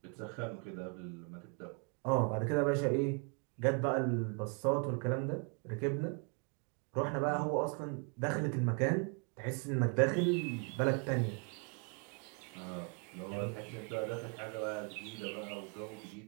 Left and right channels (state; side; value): quieter; left; 35.9 dB